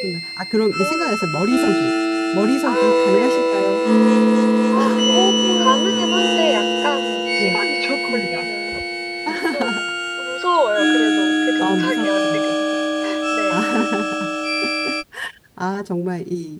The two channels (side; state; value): both; identical; correlation 1.00